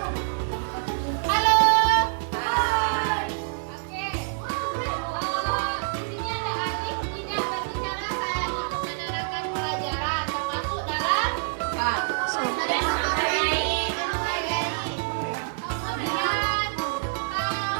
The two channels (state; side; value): silent; left; 61 dB below the other